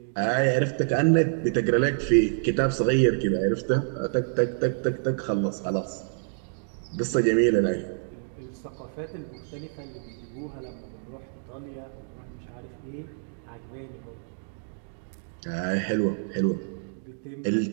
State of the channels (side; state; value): left; silent; digital silence